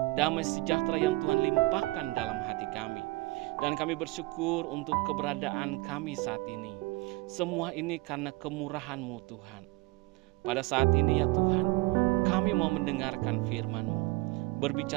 damai sejahtera yang Tuhan limpahkan dalam hati kami. Dan kami bersyukur untuk keberadaan kami saat ini. Semua ini karena kemurahan-Mu Tuhan. Pada saat ini ya Tuhan, kami mau mendengarkan firman-Mu.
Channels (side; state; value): left; quieter; 22.8 dB